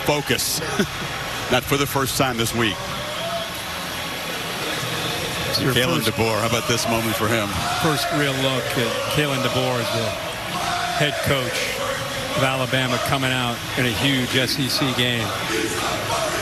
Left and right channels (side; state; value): both; identical; correlation 1.00